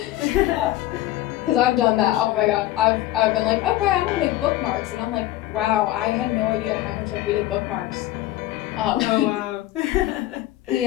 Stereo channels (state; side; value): quieter; right; 15.3 dB